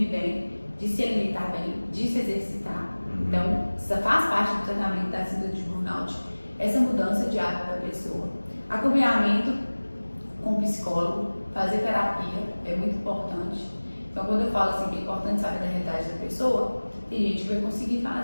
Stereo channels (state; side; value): inverted; both; correlation -1.00